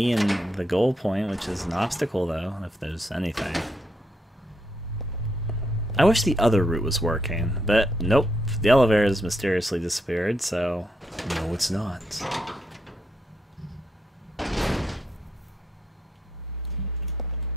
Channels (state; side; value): normal; both; correlation 0.78